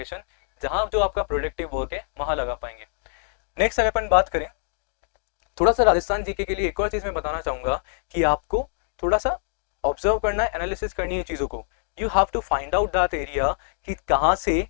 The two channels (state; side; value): silent; right; digital silence